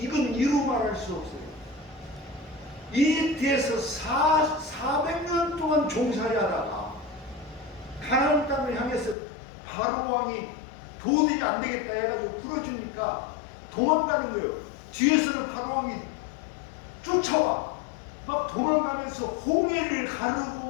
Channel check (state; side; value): drops out; right; at 9.2 s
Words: 이건 이루 말할 수 없어요. 이 뒤에서 400년 동안 종살이 하다가 가나안 땅을 향해서 바로 왕이 도저히 안 되겠다 해가지고 풀어주니까 도망가는 거예요. 뒤에서는 바로 왕이 쫓아와. 막 도망가면서 홍해를